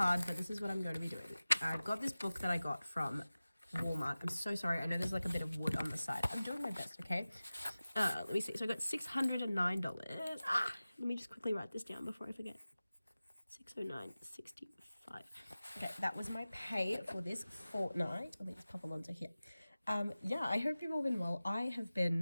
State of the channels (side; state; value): both; inverted; correlation -0.97